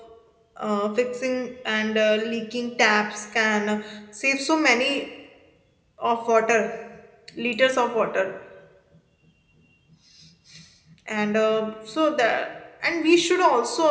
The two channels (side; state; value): both; identical; correlation 1.00